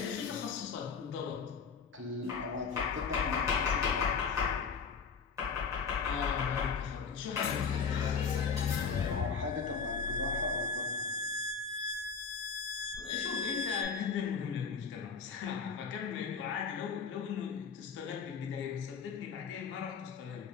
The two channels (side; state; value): right; quieter; 5.7 dB